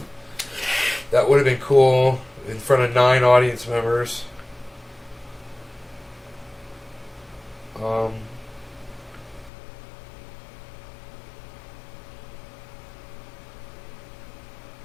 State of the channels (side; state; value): right; drops out; at 9.5 s